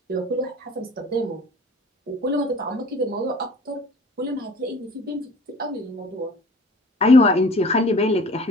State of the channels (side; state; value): both; normal; correlation 0.47